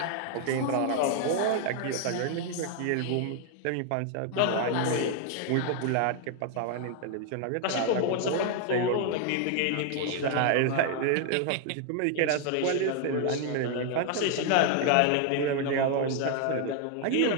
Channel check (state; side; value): different; both; correlation 0.00